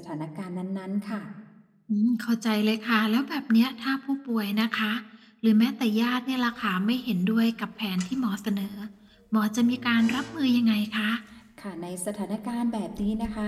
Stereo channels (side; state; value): both; identical; correlation 1.00